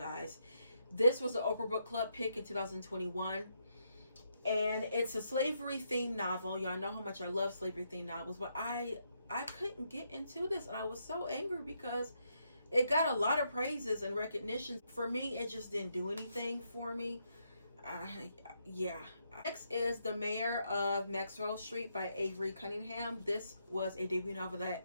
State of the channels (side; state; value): both; inverted; correlation -0.79